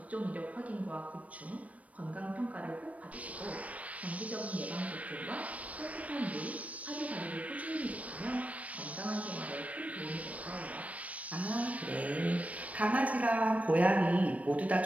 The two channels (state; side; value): late; left; 0.067 ms